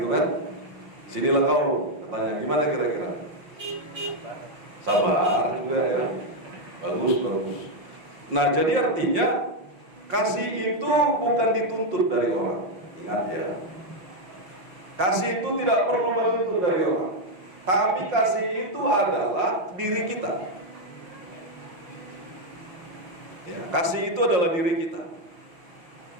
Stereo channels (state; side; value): late; left; 5.7 ms